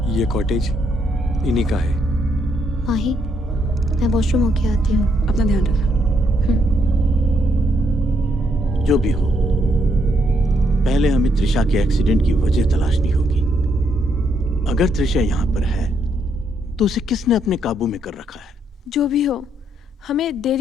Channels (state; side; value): normal; both; correlation 0.74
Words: ये कॉटेज इन्हीं का है। माही, मैं वॉशरूम होके आती हूँ। अपना ध्यान रखना। जो भी हो, पहले हमें त्रिशा के एक्सीडेंट की वजह तलाशनी होगी। अगर त्रिशा यहाँ पर है तो उसे किसने अपने काबू में कर रखा है? जो भी हो, हमें